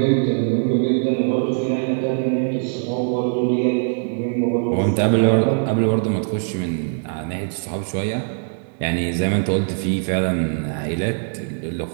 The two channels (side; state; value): left; silent; digital silence